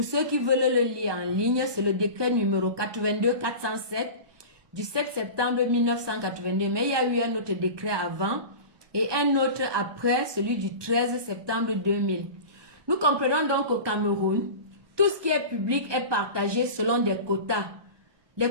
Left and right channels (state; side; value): late; left; 1.2 ms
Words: ceux qui veulent le lire en ligne, c'est le décret numéro 82-407 du 7 septembre 1982. Mais il y a eu un autre décret avant et un autre après, celui du 13 septembre 2000. Nous comprenons donc qu'au Cameroun, tout ce qui est public est partagé selon des quotas.